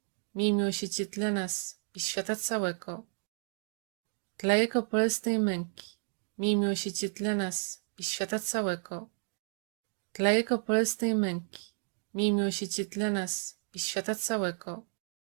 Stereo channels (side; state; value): left; silent; digital silence